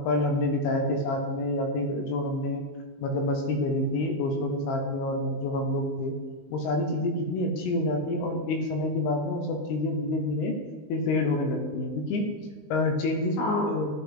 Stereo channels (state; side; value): late; right; 19 ms